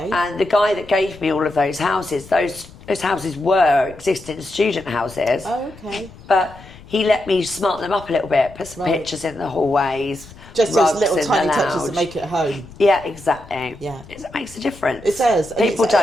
And the guy that gave me all of those houses, those houses were existing student houses. Oh, okay. But he let me smart them up a little bit, put some pictures in the hallways. Just those little tiny touches that make it home. Yeah, exactly. Yeah. It makes a difference. It does. People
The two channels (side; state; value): left; noise; rumble, 20 dB below the sound